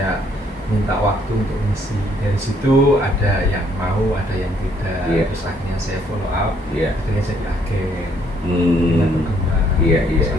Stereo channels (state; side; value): normal; both; correlation 0.67